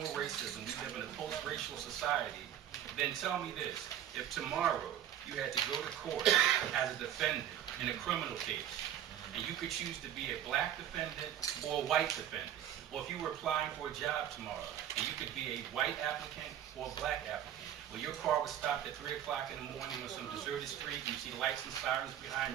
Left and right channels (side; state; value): left; quieter; 10.6 dB